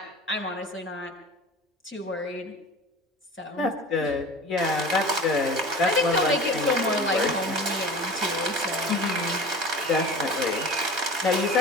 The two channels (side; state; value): both; normal; correlation 0.37